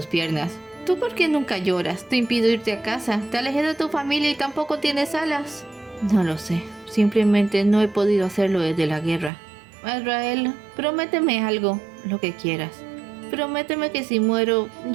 piernas. ¿Tú por qué nunca lloras? Te impido irte a casa. Te alejé de tu familia y tampoco tienes alas. No lo sé. Simplemente no he podido hacerlo desde la guerra. Azrael, prométeme algo, lo que quieras. Prométeme que si muero,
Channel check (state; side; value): drops out; left; at 9.3 s